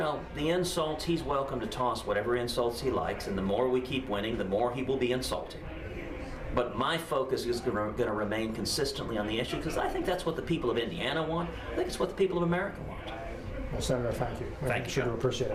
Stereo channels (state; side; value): identical; both; correlation 1.00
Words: the insults, he's welcome to toss whatever insults he likes, and the more we keep winning, the more he will be insulting. But my focus is going to remain consistently on the issue, because I think that's what the people of Indiana want. I think it's what the people of America want. Well, Senator, thank you. Thank you, John. Appreciate